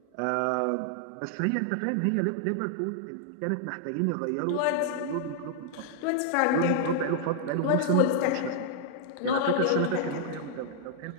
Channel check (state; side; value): different; both; correlation -0.01